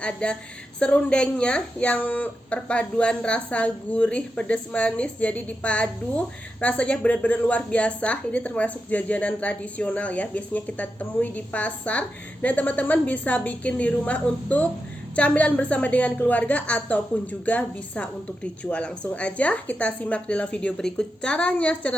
ada serundengnya yang perpaduan rasa gurih, pedas, manis. Jadi dipadu, rasanya benar-benar luar biasa. Ini termasuk jajanan tradisional ya. Biasanya kita temui di pasar dan teman-teman bisa bikin di rumah untuk camilan bersama dengan keluarga ataupun juga bisa untuk dijual. Langsung aja kita simak dalam video berikut caranya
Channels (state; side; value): normal; both; correlation 0.88